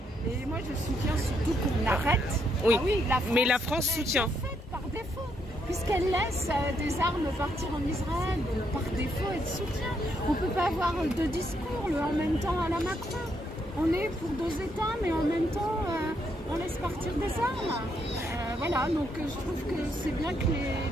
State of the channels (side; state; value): both; normal; correlation 0.75